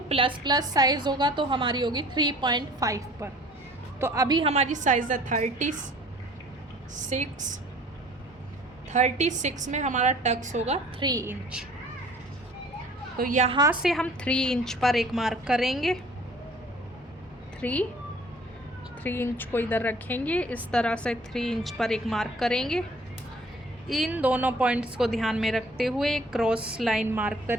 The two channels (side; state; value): both; normal; correlation 0.52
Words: प्लस प्लस साइज़ होगा तो हमारी होगी 3.5 पर। तो अभी हमारी साइज़ है 36 में हमारा टक्स होगा 3 इंच। तो यहाँ से हम 3 इंच पर एक मार्क करेंगे, 3 इंच को इधर रखेंगे, इस तरह से 3 इंच पर एक मार्क करेंगे। इन दोनों पॉइंट्स को ध्यान में रखते हुए क्रॉस लाइन मार्क